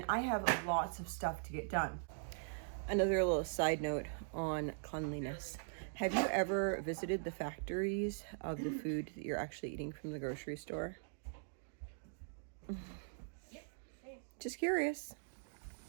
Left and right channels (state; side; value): silent; left; digital silence